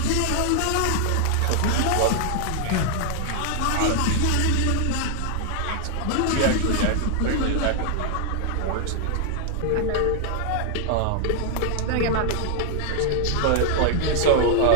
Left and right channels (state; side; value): different; both; correlation 0.00